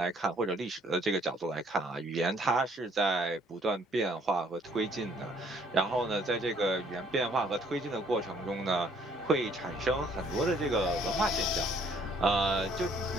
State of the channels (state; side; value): normal; both; correlation 0.62